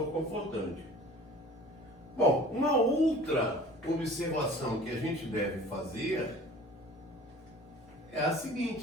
confortante. Bom, uma outra observação que a gente deve fazer é a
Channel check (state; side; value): normal; both; correlation 0.45